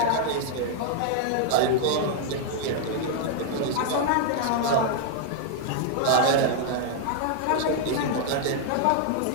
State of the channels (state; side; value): different; both; correlation -0.01